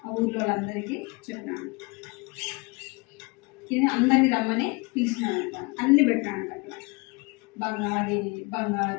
ఆ ఊర్లో వాళ్ళందరికీ చెప్పినాడు. ఇది అందరినీ రమ్మని పిలిచినాడంట. అన్ని పెట్టాడంట అక్కడ.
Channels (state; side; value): quieter; right; 27.9 dB